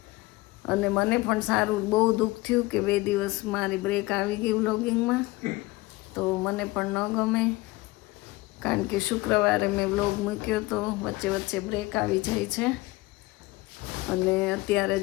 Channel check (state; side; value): quieter; right; 20.9 dB